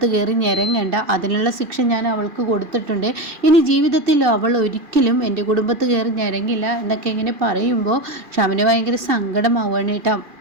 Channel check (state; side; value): late; left; 2.4 ms